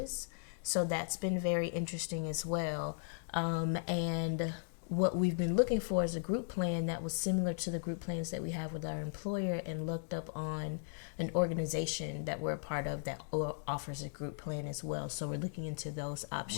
So that's been very interesting as well. And what we've been looking for is a group plan that was similar to the group plans that we have with our employer, and looked up on an organization that we're a part of that offers a group plan as well. So we're looking into those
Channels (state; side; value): silent; right; digital silence